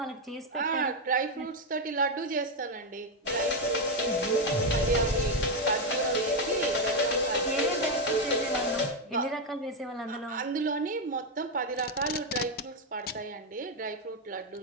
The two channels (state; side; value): normal; both; correlation 0.05